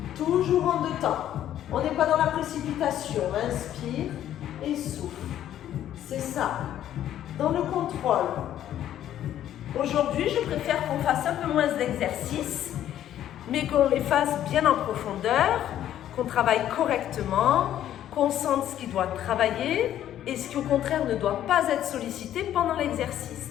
Toujours en 2 temps. On n'est pas dans la précipitation. Inspire et souffle. C'est ça. Dans le contrôle. Aujourd'hui, je préfère qu'on fasse un peu moins d'exercices, mais qu'on les fasse bien en profondeur, qu'on travaille correctement, qu'on sente ce qui doit travailler et ce qui au contraire ne doit pas être sollicité pendant l'exercice.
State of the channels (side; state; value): right; quieter; 11.5 dB